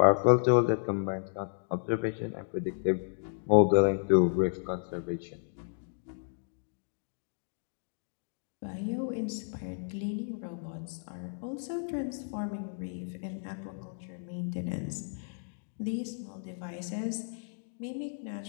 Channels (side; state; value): right; silent; digital silence